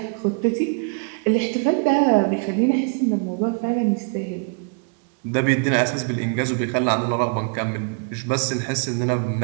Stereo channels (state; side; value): quieter; left; 36.5 dB